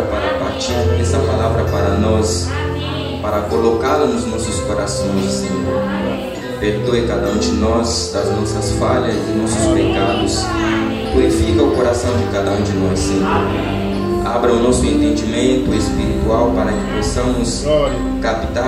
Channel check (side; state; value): both; identical; correlation 1.00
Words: para partir essa palavra para nós, para colocá-la nos nossos corações, Senhor. Perdoe cada um de nós das nossas falhas e nossos pecados. Purifica o coração de cada um de nós, Senhor. Abra o nosso entendimento espiritual para que possamos